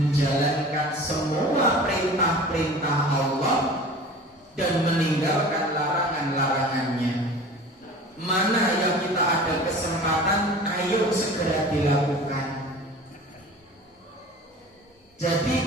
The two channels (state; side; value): normal; both; correlation 0.40